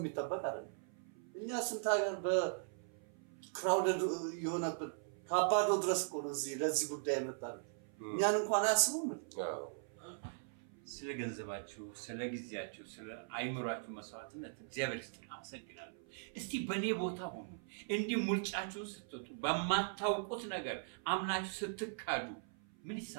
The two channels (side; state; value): left; silent; 51 dB below the other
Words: አይደለም። እኛ ስንት ሀገር በክራውደድ የሆነብን ከአባዶ ድረስ እኮ ነው እዚህ ለዚህ ጉዳይ የመጣን። እኛን እንኳን አያስቡም። ስለ ገንዘባችሁ፣ ስለ ጊዜያችሁ፣ ስለ አይምሯችሁ መስዋዕትነት እግዚአብሔር ይስጥልኝ፣ አመሰግናለሁ። እስቲ በኔ ቦታ ሆኑ። እንዲህ ሙልጫችሁን ስትወጡ በማታውቁት ነገር አምናችሁ ስትካዱ ምን